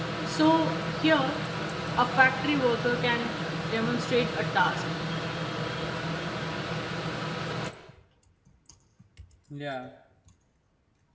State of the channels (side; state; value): both; identical; correlation 1.00